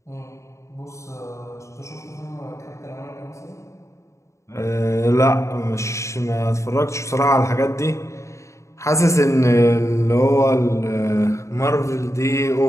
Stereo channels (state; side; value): late; right; 0.14 ms